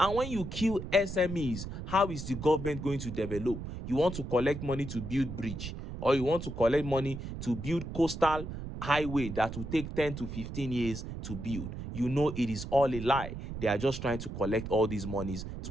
when you kill SMEs, how is the government going to develop? You want to collect money to build bridge, or you want to collect money to build coastal highway that will take 10 to 15 years to build. You know it is all a lie. They are just trying to collect all these monies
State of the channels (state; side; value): noise; right; rumble, 8 dB below the sound